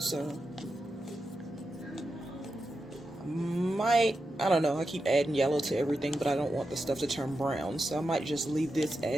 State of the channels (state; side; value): normal; both; correlation 0.89